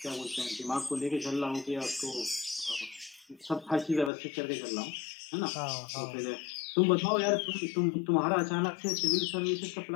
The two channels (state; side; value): drops out; right; at 4.1 s